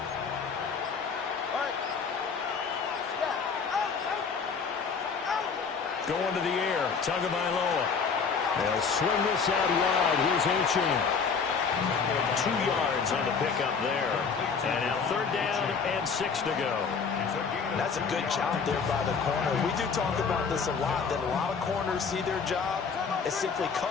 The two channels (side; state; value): right; quieter; 5.6 dB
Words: Going to the air, Tagovailoa. They'll swing this out wide. Here's Achane. 2 yards on the pickup there. And now 3rd down and 6 to go. That's a good job there by the corner. We do talk about this a lot, that a lot of corners see their job as simply